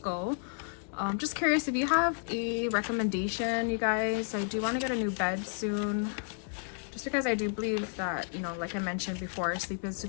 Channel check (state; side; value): silent; right; 57 dB below the other